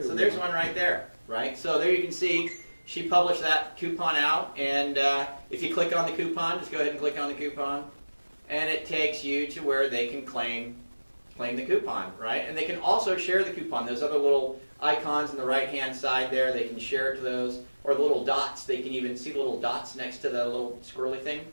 So there's one right there, right? So there you can see she published that coupon out, and if you click on the coupon, just go ahead and click on the coupon, and it takes you to where they can claim the coupon, right? And they can also share the coupon. Those other little icons on the right-hand side there, they can share it to those, or the little dots. They can even see the little dots next to the little squirrely thing.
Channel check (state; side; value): inverted; both; correlation -1.00